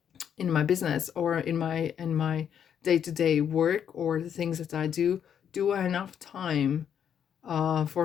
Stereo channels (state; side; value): quieter; right; 8.6 dB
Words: my business, or in my day-to-day work, or the things that I do I enough time for